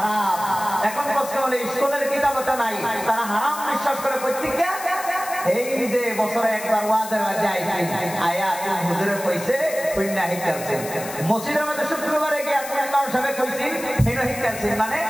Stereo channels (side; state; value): left; noise; hiss, 11 dB below the sound